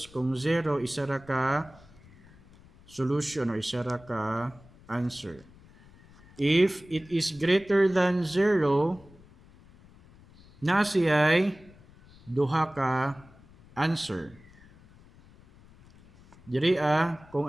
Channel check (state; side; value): noise; left; rumble, 25 dB below the sound